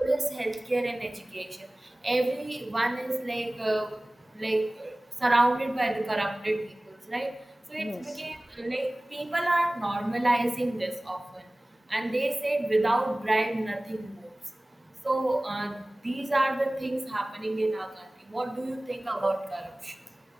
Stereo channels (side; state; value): both; normal; correlation 0.98